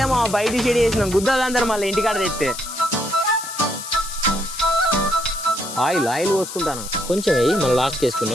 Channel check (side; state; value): left; noise; hiss, 10 dB below the sound